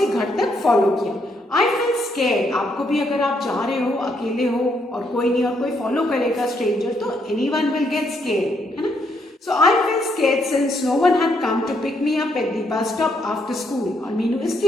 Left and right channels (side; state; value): both; normal; correlation 0.75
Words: घर तक फॉलो किया. I feel scared. आपको भी अगर आप जा रहे हो, अकेले हो और कोई नहीं और कोई फॉलो करेगा स्ट्रेंजर, तो एनीवन विल गेट स्केर्ड, है ना. So I felt scared since no one had come to pick me up at the bus stop after school. और मीनू